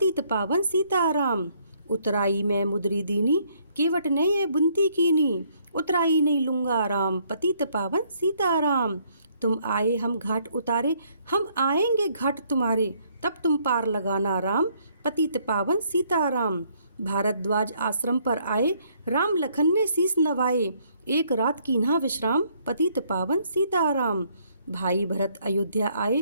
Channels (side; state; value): both; inverted; correlation -0.67